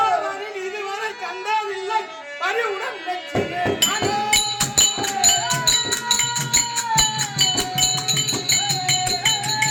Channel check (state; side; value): identical; both; correlation 1.00